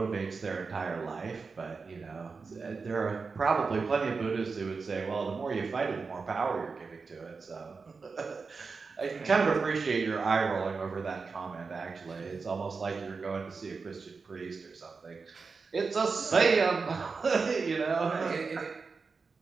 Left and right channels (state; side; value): quieter; left; 4.7 dB